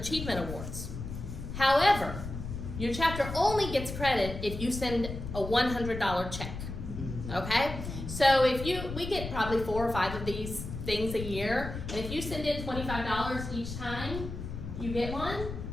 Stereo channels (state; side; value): noise; left; rumble, 7 dB below the sound